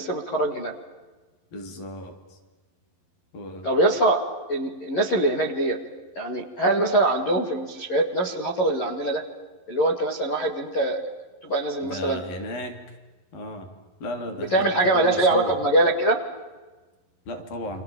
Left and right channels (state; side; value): late; right; 11 ms